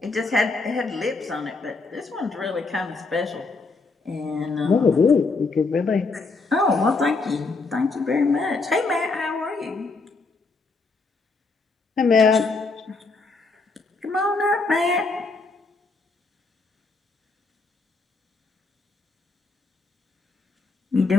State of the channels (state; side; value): quieter; right; 3.9 dB